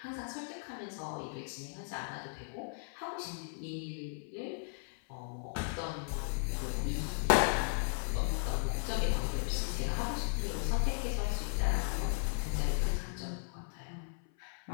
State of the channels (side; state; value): right; silent; 54 dB below the other